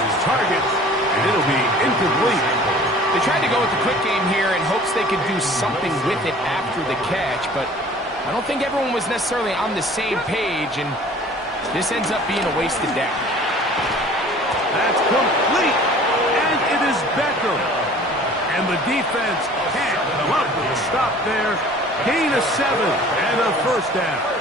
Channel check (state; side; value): normal; both; correlation 0.48